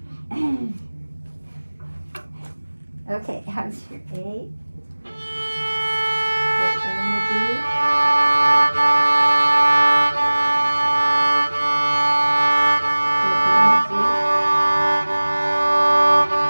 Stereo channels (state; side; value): inverted; both; correlation -1.00